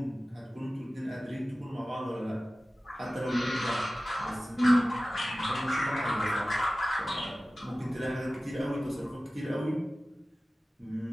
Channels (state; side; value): normal; both; correlation 0.96